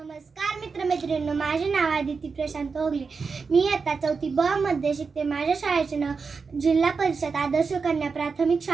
मित्रमैत्रिणींनो, माझे नाव आदिती प्रशांत ओगले. मी आता 4थी ब मध्ये शिकते. माझ्या शाळेचे नाव जिल्हा परिषद आदर्श कन्या प्राथमिक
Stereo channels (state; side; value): quieter; left; 5.0 dB